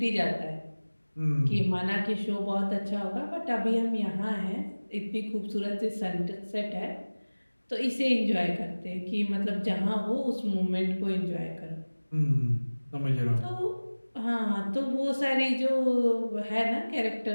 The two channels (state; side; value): inverted; both; correlation -1.00